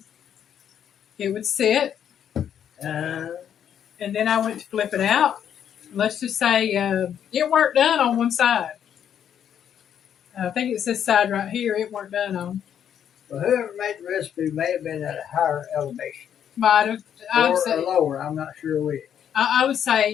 it would sit. And then I went to flip it out. Let's just say it weren't done on one side. I think it's this side right here it weren't done on. Well, whoever made the recipe may have been at a higher elevation. Might have. Or lower, I'm not sure which. I would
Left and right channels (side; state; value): right; quieter; 9.1 dB